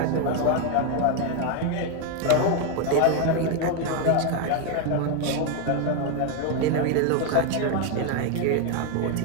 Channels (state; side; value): different; both; correlation 0.01